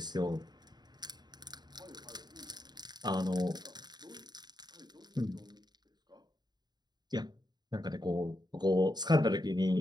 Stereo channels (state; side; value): late; left; 0.20 ms